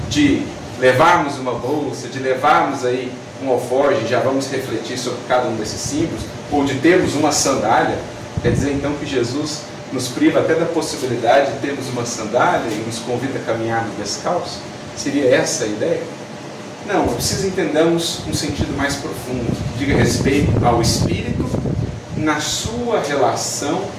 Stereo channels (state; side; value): identical; both; correlation 1.00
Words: de levarmos uma bolsa, de levarmos aí um alforje, já vamos refletir sobre cada um desses símbolos, ou de termos uma sandália, quer dizer então que Jesus nos priva até da possibilidade de termos uma sandália e nos convida a caminhar descalço? Seria essa a ideia? Não, é preciso entendermos um sentido mais profundo, que diga respeito ao espírito na sua relação